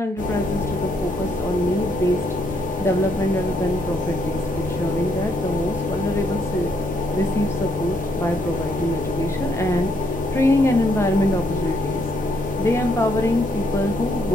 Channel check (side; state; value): both; normal; correlation 0.72